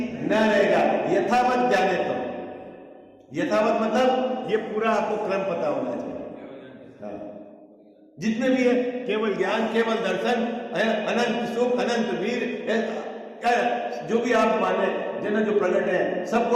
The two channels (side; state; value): both; identical; correlation 1.00